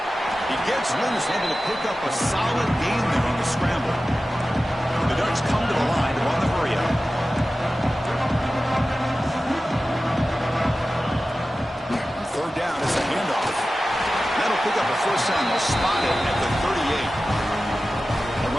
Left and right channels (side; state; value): both; normal; correlation 0.95